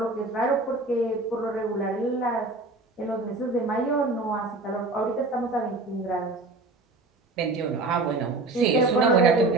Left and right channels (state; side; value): quieter; left; 3.1 dB